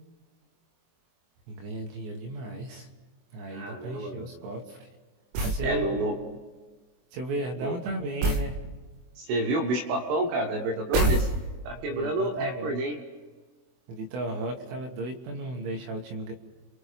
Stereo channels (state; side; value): late; left; 24 ms